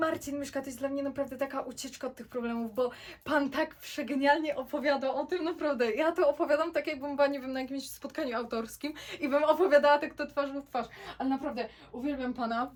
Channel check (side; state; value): both; identical; correlation 1.00